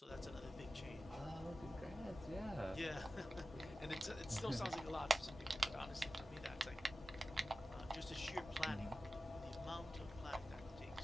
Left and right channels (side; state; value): both; normal; correlation 0.94